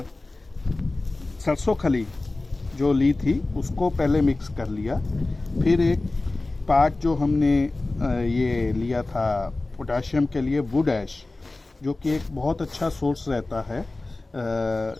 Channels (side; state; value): right; quieter; 3.1 dB